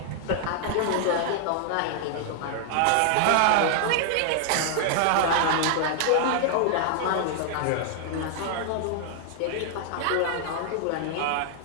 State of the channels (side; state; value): both; different; correlation 0.00